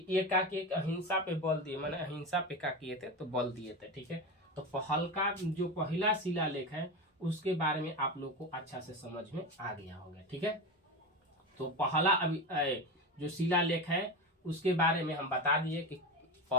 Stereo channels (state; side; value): normal; both; correlation 0.22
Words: एक अहिंसा पे बल दिए, मैंने अहिंसा पे क्या किए थे, तो बल दिए थे। ठीक है, तो हल्का जो पहला शिलालेख है उसके बारे में आप लोग को अच्छा से समझ में आ गया होगा। ठीक है, तो पहला अभी जो शिलालेख है उसके बारे में हम बता दिए कि